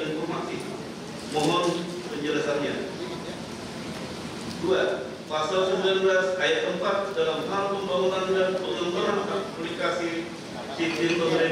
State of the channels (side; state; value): both; identical; correlation 1.00